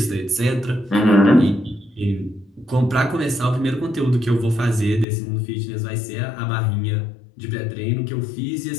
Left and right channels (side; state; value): right; drops out; at 5.1 s